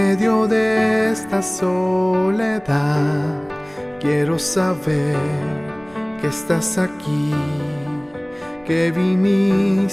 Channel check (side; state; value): right; noise; rumble, 29 dB below the sound